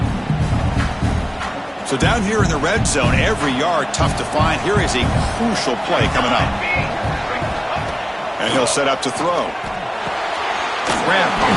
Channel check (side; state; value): both; identical; correlation 1.00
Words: So down here in the red zone, every yard tough to find. Here is a crucial play coming up. And he'll set up to throw. Grab